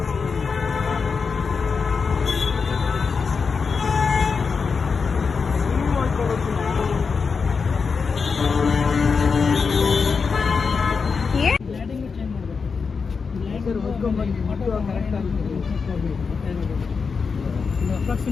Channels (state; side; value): quieter; right; 5.3 dB